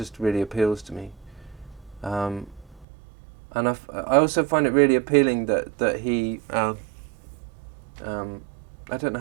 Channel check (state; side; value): drops out; left; at 2.9 s